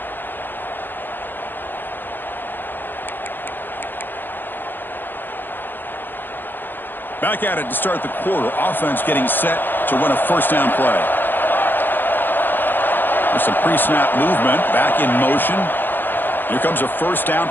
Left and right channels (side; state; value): right; late; 0.094 ms